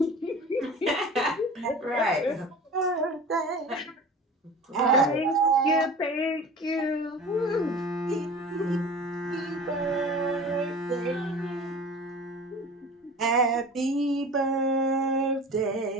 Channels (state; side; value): normal; both; correlation 0.39